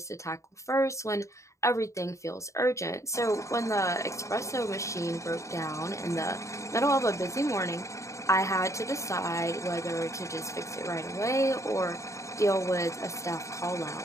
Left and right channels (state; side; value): late; right; 0.14 ms